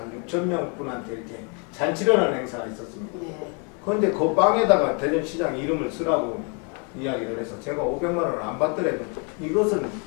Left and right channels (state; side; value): quieter; right; 35.8 dB